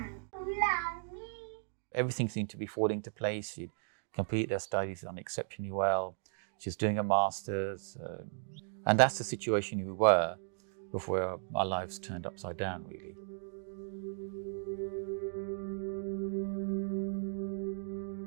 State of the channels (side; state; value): left; silent; digital silence